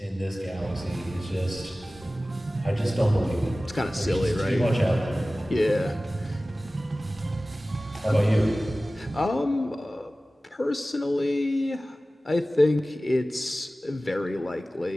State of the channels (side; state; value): both; normal; correlation 0.97